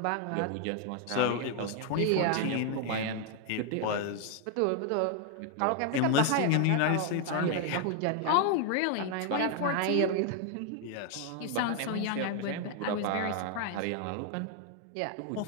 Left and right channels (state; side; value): different; both; correlation 0.00